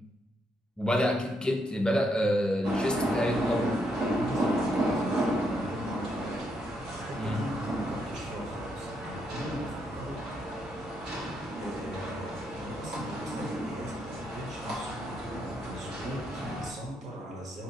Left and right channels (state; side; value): normal; both; correlation 0.78